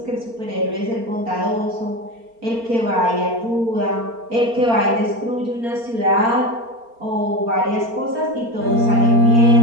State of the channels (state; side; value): late; left; 4.4 ms